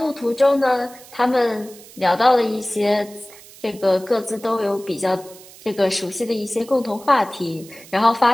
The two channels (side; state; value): right; noise; hiss, 20 dB below the sound